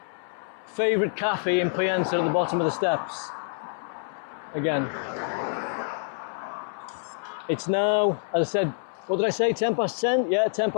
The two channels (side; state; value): right; silent; 60 dB below the other